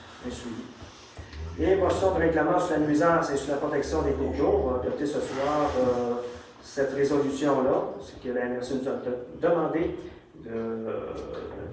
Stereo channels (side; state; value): both; identical; correlation 1.00